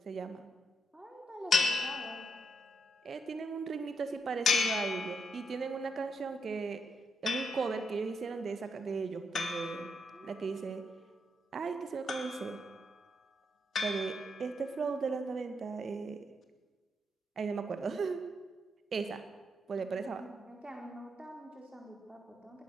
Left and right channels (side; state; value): both; normal; correlation 0.80